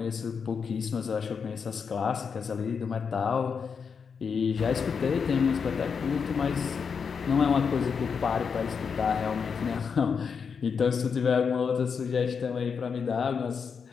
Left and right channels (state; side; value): quieter; right; 6.1 dB